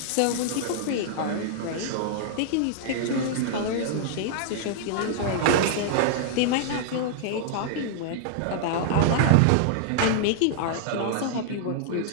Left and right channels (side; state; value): both; different; correlation -0.01